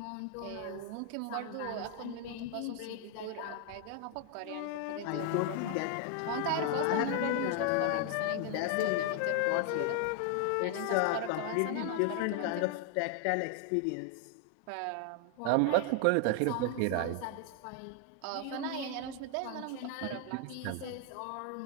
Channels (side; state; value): both; different; correlation 0.00